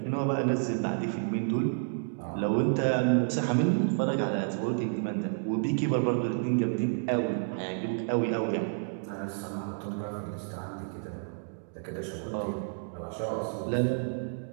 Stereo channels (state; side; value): silent; left; digital silence